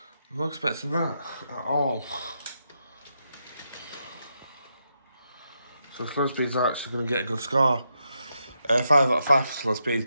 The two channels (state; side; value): inverted; both; correlation -0.82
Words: I'm not expecting that at all. So slow speeds are actually going to get a good score. 5 out of 5 for slow speed,